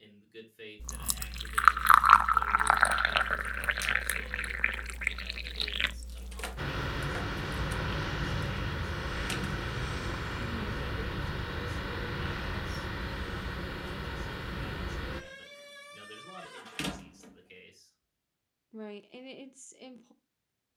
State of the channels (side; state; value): both; identical; correlation 1.00